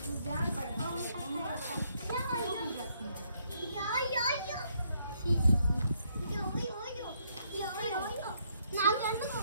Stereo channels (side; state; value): both; inverted; correlation -0.72